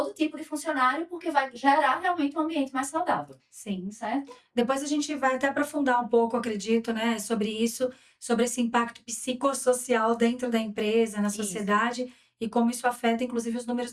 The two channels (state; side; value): identical; both; correlation 1.00